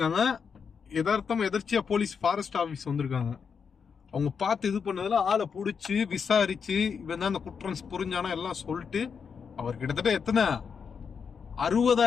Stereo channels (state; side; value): quieter; right; 6.3 dB